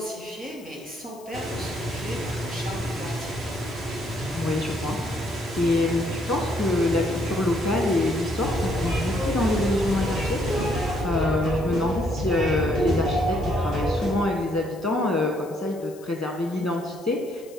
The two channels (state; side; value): noise; left; hiss, 24 dB below the sound